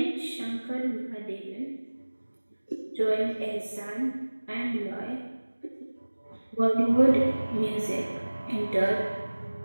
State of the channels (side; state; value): both; inverted; correlation -1.00